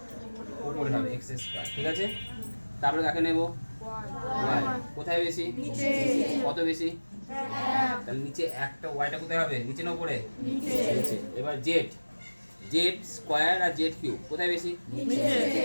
উপরে হবে, x²। ঠিক আছে? তারপরে কাকে নেব? y। কোথায় বেশি? কত বেশি? তাহলে নিচে একটা, ওয়াইটা কোথায় হবে? নিচে না উপরে? নিচে। এবার z² আর z³ কোথায় বেশি?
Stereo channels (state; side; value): inverted; both; correlation -1.00